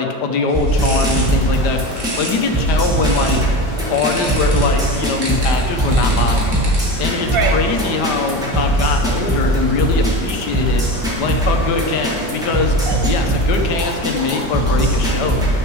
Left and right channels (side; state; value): both; normal; correlation 0.27